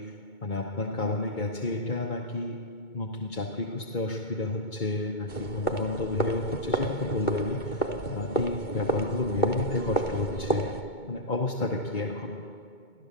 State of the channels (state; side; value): late; right; 2.2 ms